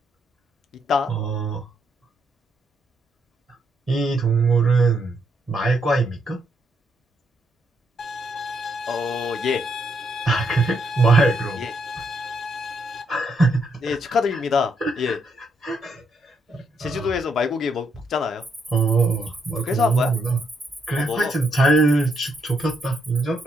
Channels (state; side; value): normal; both; correlation 0.76